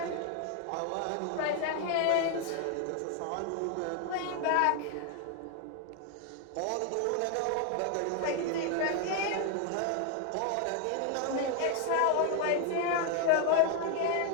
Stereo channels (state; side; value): different; both; correlation 0.00